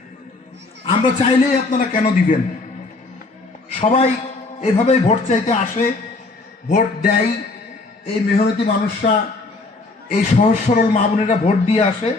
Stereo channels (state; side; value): quieter; right; 3.4 dB